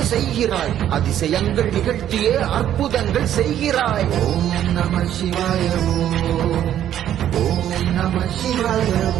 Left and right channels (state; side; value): quieter; left; 11.0 dB